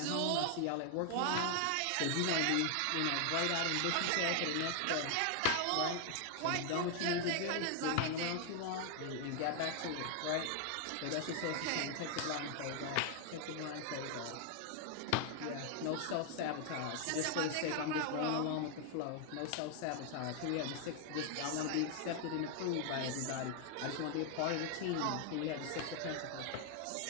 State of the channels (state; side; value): different; both; correlation 0.00